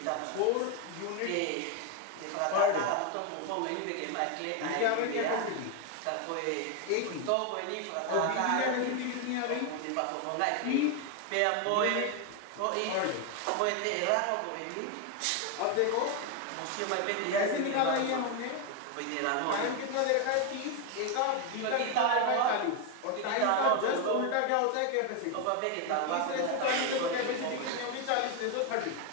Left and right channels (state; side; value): different; both; correlation 0.01